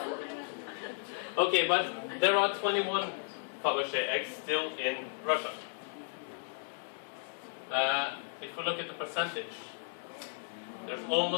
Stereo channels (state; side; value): silent; right; digital silence